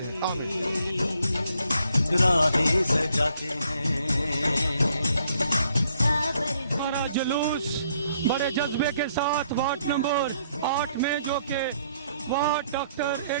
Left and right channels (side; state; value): both; inverted; correlation -0.69